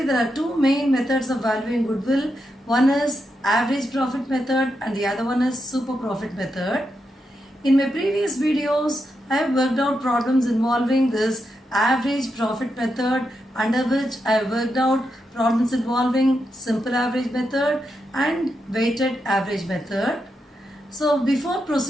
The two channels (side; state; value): both; normal; correlation 0.85